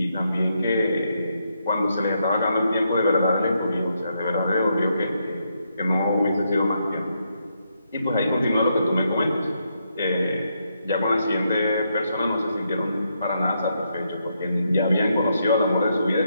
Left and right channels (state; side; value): inverted; both; correlation -0.79